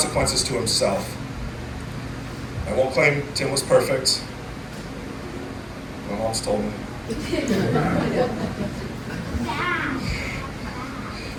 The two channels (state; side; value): identical; both; correlation 1.00